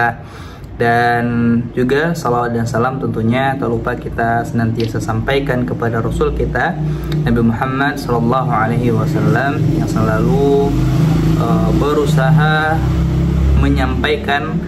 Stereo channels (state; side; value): identical; both; correlation 1.00